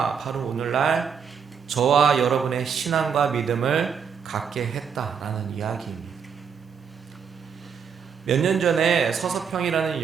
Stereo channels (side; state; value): left; quieter; 6.7 dB